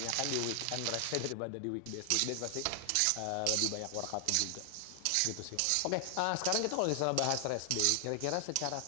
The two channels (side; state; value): both; different; correlation 0.00